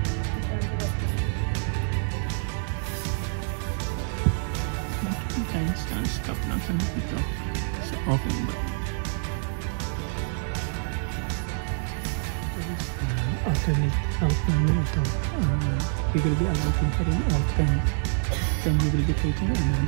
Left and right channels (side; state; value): left; silent; 60 dB below the other